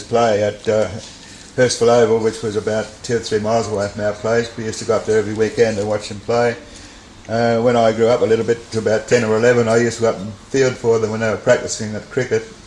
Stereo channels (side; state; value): both; identical; correlation 1.00